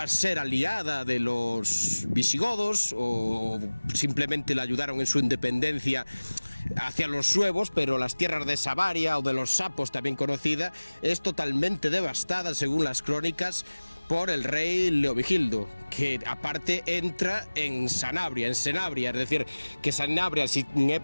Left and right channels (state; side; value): inverted; both; correlation -1.00